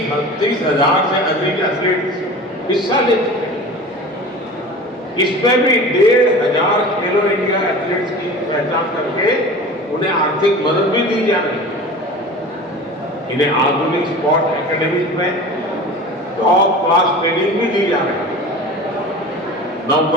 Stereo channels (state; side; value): normal; both; correlation 0.36